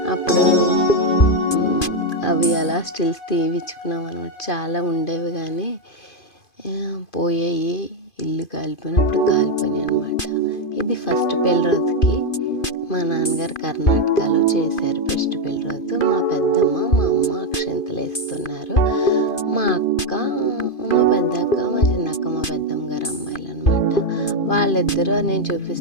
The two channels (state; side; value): late; right; 2.5 ms